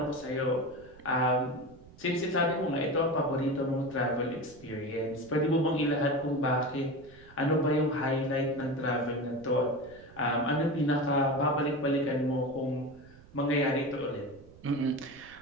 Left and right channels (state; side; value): noise; right; rumble, 22 dB below the sound